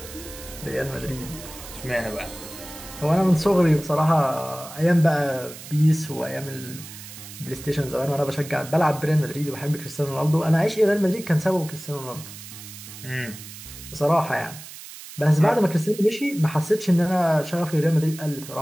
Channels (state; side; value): noise; right; hiss, 14 dB below the sound